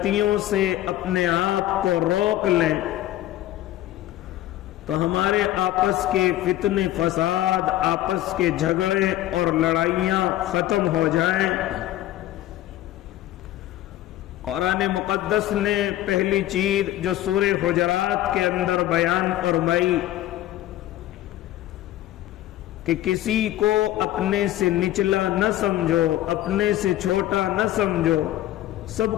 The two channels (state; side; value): quieter; right; 14.4 dB